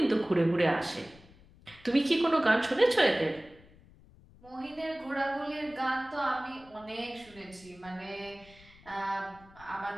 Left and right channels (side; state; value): left; noise; rumble, 24 dB below the sound